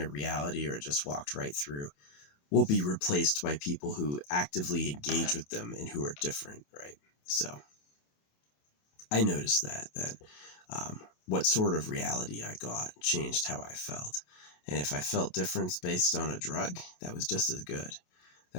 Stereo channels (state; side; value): late; right; 28 ms